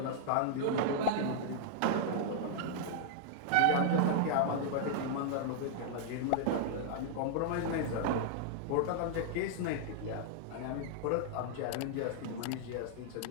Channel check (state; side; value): different; both; correlation -0.01